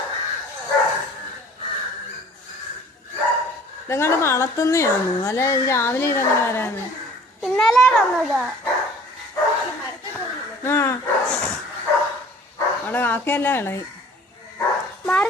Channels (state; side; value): normal; both; correlation 0.49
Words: ഇതങ്ങാണ്ട് വളർത്തുന്നയാണോ? അല്ലെ രാവിലെ ഇതങ്ങനെ വരാന്ന്? ഇന്നലെ വന്നതാ. ആ അവിടെ കാക്കയല്ല ഇളകി.